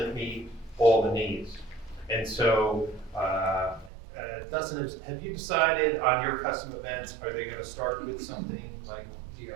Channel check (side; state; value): left; drops out; at 3.9 s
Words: meet all the needs. And so, Dustin, have you decided on your custom events, are they gonna start with something like